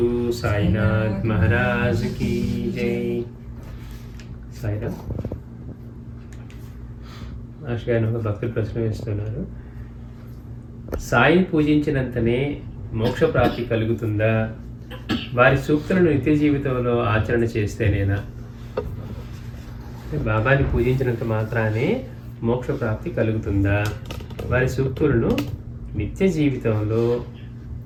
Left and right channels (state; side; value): identical; both; correlation 1.00